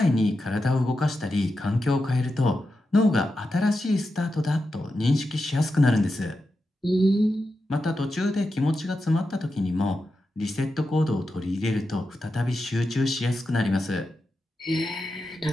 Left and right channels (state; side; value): normal; both; correlation 0.89